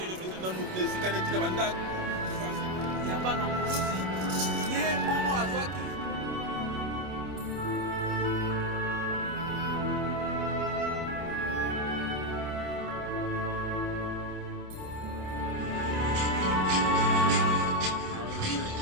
na esika neti na bandako ya bana mosi ye bongo azwaki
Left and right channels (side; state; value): left; late; 27 ms